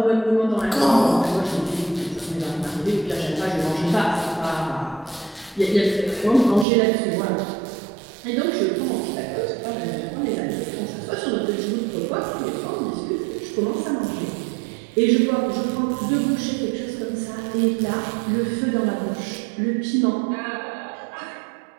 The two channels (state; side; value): drops out; left; at 6.7 s